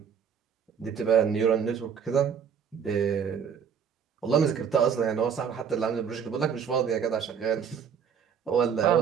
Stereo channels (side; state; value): left; quieter; 7.3 dB